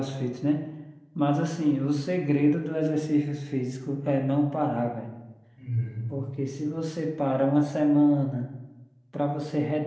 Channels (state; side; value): identical; both; correlation 1.00